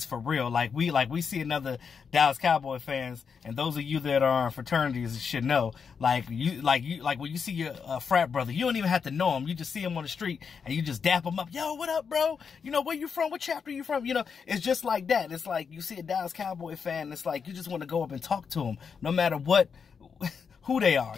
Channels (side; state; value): right; quieter; 6.1 dB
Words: for real. Like we see another Dallas Cowboy fans, and those of you that are in fraternities should know. Like when you see your frat brother, you don't even have to know him. You just see him on the street and you just dap him up. Yo, what up, bro? You know, where you from? What chapter you from? You know, it's just like that. It's like you see a Dallas Cowboy fan, it's like you just want to go up and talk to him, no matter what, who they are.